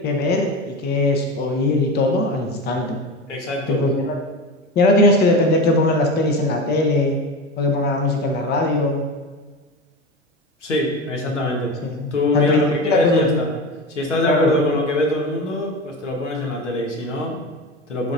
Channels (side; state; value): both; normal; correlation 0.25